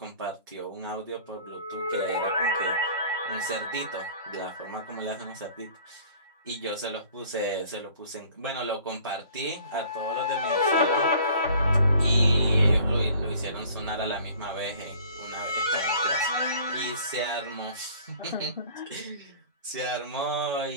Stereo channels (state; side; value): inverted; both; correlation -0.51